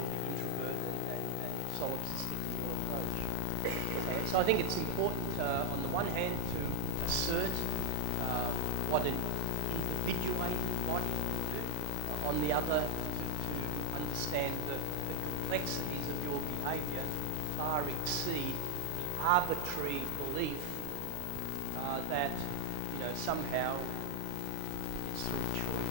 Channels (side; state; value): both; different; correlation 0.00